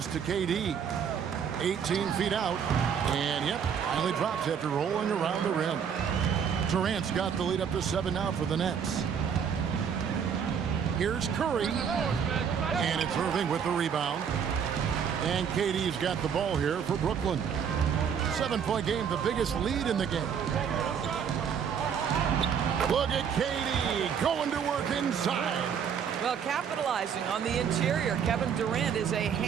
to KD. 18 feet out. And yep, finally drops after rolling around the rim. Durant's got the lead up to 7 now for the Nets. Here's Curry. And it's Irving with the rebound. And KD's got the ball here for Brooklyn. 7-point game, the biggest lead in the game. Look at KD going to work inside. Well, capitalizing on the interior, Kevin Durant is a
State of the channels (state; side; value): quieter; left; 7.5 dB